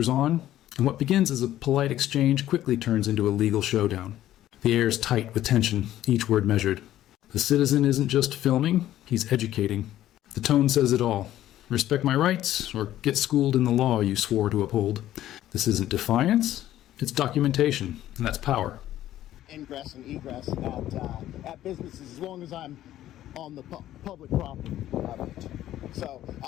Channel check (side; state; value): right; quieter; 13.2 dB